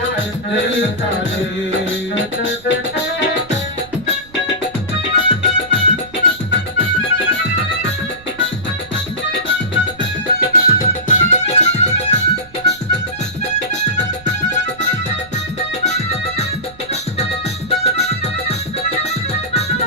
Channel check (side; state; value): right; noise; rumble, 23 dB below the sound